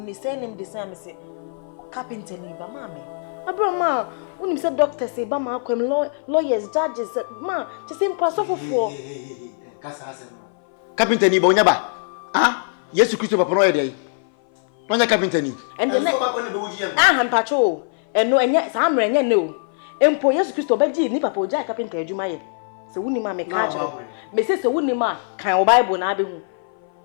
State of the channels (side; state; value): right; silent; 58 dB below the other